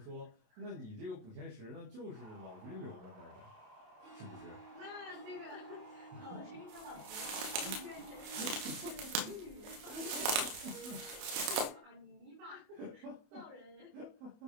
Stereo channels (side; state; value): left; late; 28 ms